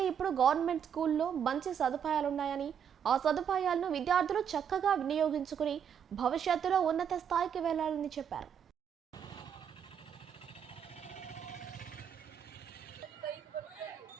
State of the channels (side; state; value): left; quieter; 8.1 dB